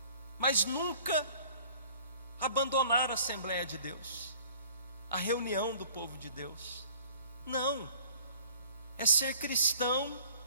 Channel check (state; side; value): inverted; both; correlation -0.52